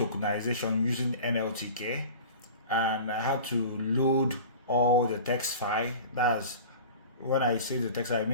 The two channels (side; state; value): both; inverted; correlation -0.38